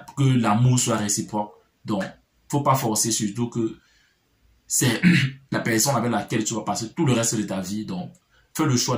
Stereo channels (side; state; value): both; identical; correlation 1.00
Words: soit réciproque. Donc, faut pas forcer, surtout que c'est la personne avec laquelle tu vas passer tout le reste de ta vie. Donc, fais le choix